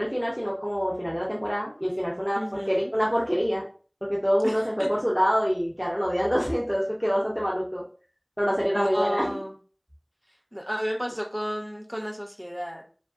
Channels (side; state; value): both; identical; correlation 1.00